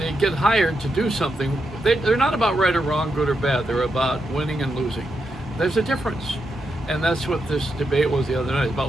get hired to do something. They're not about right or wrong, good or bad. They're about winning and losing. There's a difference. And that's what this debate was the other night. It's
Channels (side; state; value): both; normal; correlation 0.84